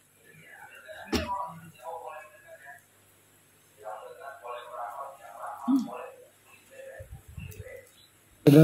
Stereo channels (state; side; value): identical; both; correlation 1.00